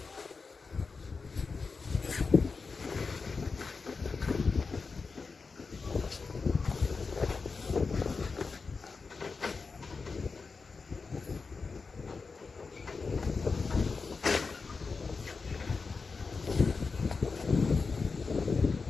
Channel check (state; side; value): quieter; right; 4.6 dB